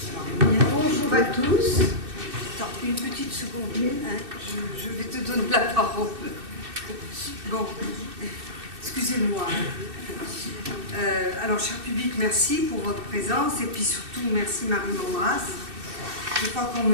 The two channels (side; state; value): left; late; 2.6 ms